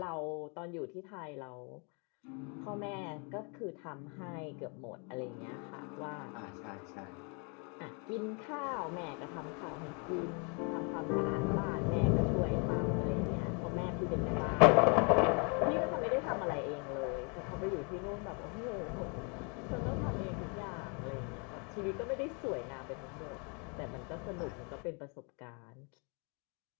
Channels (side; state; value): right; quieter; 35.6 dB